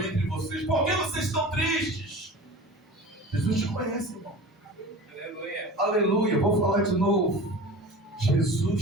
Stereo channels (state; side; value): normal; both; correlation 0.36